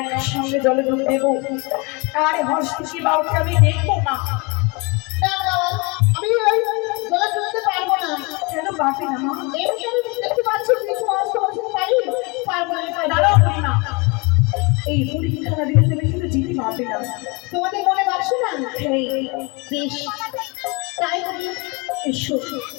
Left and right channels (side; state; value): right; quieter; 28.4 dB